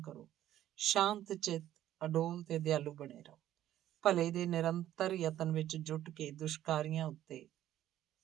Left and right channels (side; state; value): left; quieter; 12.5 dB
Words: ਕਰੋ। ਸ਼ਾਂਤ ਚਿੱਤ, ਅਡੋਲ ਤੇ ਦਿਆਲੂ ਬਣੇ ਰਹੋ। ਭਲੇ ਦੇ ਨਿਰੰਤਰ ਯਤਨ ਵਿੱਚ ਜੁਟ ਕੇ ਦੁਸ਼ਕਾਰੀਆਂ ਉੱਤੇ